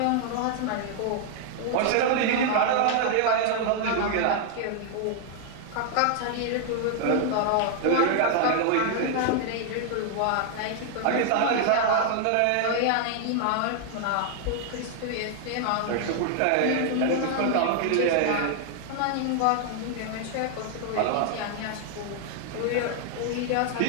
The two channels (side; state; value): both; different; correlation 0.00